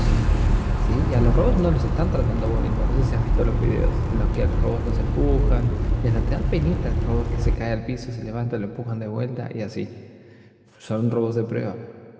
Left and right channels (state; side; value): identical; both; correlation 1.00